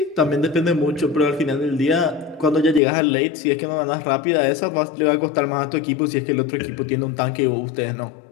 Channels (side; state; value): right; drops out; at 2.8 s